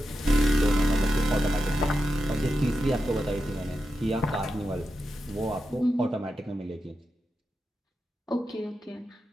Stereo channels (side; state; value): both; normal; correlation 0.88